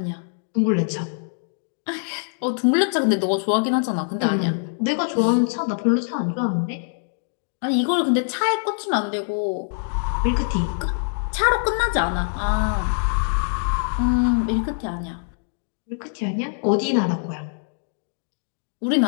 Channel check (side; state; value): right; silent; digital silence